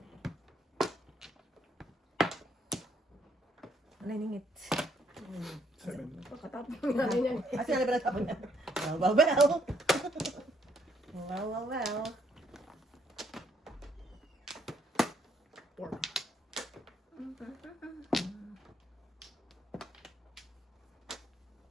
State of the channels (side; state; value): both; normal; correlation 0.70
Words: Ano ningit? 7. Pagkatapos ng nanay niyan. Asa na ba natapon na? Well. Well. 4.